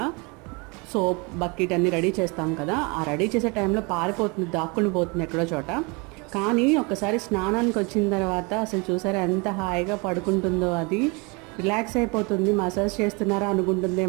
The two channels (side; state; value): left; quieter; 29.3 dB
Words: సోప్ బకెట్ అన్నీ రెడీ చేస్తాం కదా, ఆ రెడీ చేసే టైంలో పారిపోతుంది, దాక్కుని పోతుంది ఎక్కడో చోట. కానీ ఒకసారి స్నానానికి వచ్చిన తర్వాత అసలు చూసారా ఎంత హాయిగా పడుకుంటుందో, అది రిలాక్స్ అయిపోతుంది. మసాజ్ చేస్తున్నారా